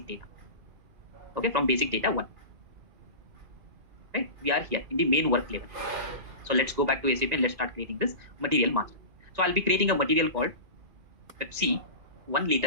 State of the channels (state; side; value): late; left; 2.4 ms